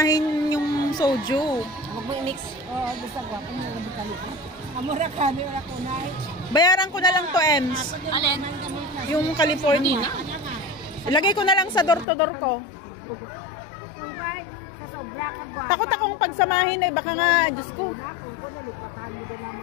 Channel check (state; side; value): drops out; right; at 12.1 s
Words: yung soju. Huwag mo i-mix. Basta guwapo mo yung bukalipan. Amura kami, wala ko na. Bayaran ko na lang to, Ems. Alin? Yung California. Ilagay ko na lang sa door-to-door ko. Takot akong pagsamahin eh. Baka nga, Diyos ko.